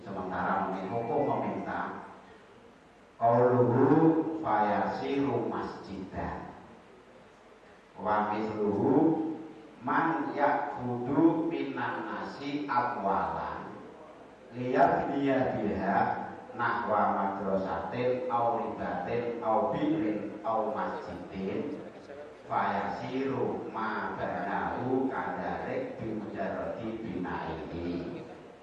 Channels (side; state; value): both; identical; correlation 1.00